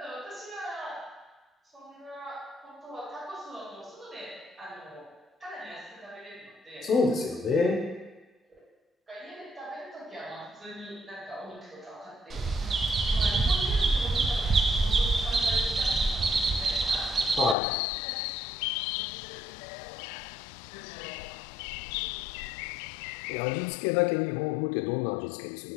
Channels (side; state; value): right; drops out; at 17.6 s